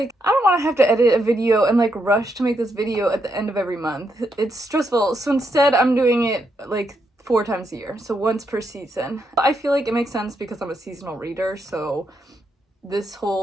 I don't want to have to edit a video and like rush to make this video at the end of every month. It's stressful. So instead, I'm doing it like 4 times a year, so once per season. I feel like it makes sense because I'm a seasonal reader, so this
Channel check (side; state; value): both; normal; correlation 0.79